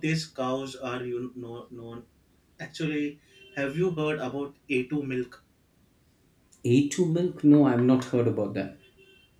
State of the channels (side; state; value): both; identical; correlation 1.00